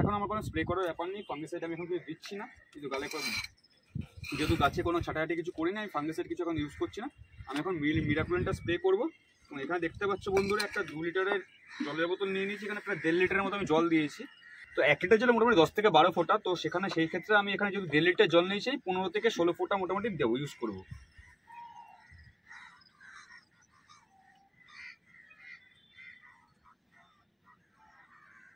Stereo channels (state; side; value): identical; both; correlation 1.00